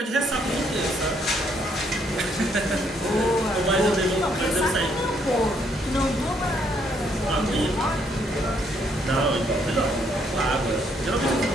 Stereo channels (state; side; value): normal; both; correlation 0.70